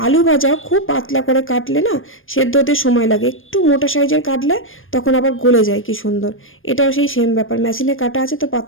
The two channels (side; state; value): right; late; 0.59 ms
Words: আলু ভাজাও খুব পাতলা করে কাটলে না সেদ্ধ হতে সময় লাগে, একটু মোটা সাইজের কাটলে তখন আবার গলে যায় কি সুন্দর। এটাও সেই সেম ব্যাপার, মেশিনে কাটা আছে তো